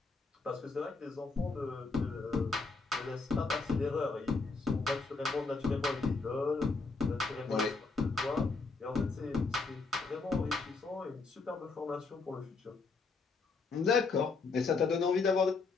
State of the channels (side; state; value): right; quieter; 4.2 dB